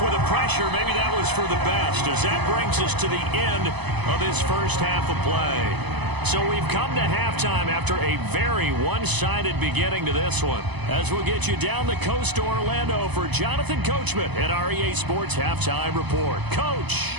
with the pressure. Maybe that was for the best, as that brings us to the end of this first half of play. So we've come to halftime after a very one-sided beginning to this one. As we'll get you down the coast to Orlando for Jonathan Coachman at our EA Sports Halftime Report. Coach.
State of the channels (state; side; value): late; left; 0.99 ms